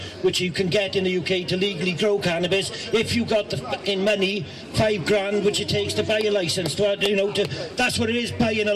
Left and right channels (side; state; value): both; identical; correlation 1.00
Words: which you can get in the UK to legally grow cannabis if you got the fucking money, £5,000, which it takes to buy a license. That's what it is, buying a